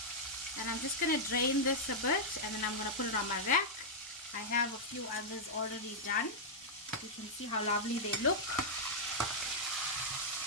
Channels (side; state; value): both; normal; correlation -0.07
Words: And I'm just going to drain this a bit, and then I'm going to put it on my rack. I have a few others already done. You can see how lovely they look.